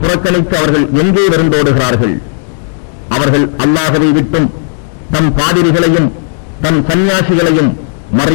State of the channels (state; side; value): silent; right; digital silence